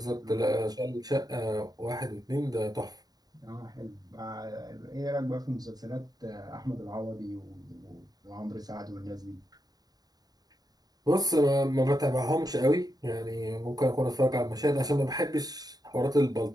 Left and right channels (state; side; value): late; left; 0.19 ms